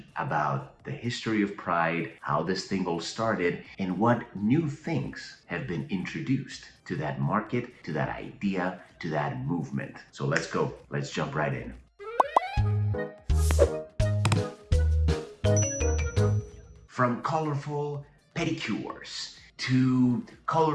about the history of Pride, how this thing all started, and what new things have been introduced to that market, to that idea, to that movement. So let's go. Let's jump right in. From colorful pedicures to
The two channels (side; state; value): both; identical; correlation 1.00